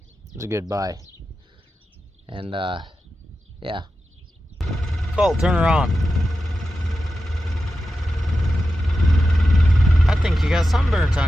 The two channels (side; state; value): both; normal; correlation 0.91